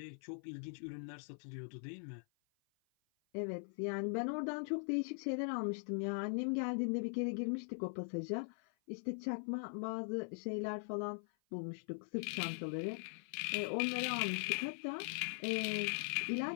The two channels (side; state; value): right; silent; 50 dB below the other